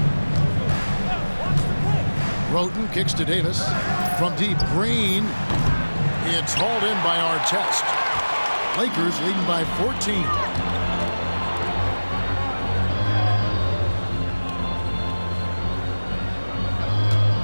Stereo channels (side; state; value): both; inverted; correlation -1.00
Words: Roten kicks to Davis. From deep, Green. It's hauled in by Artest. Lakers leading by 14.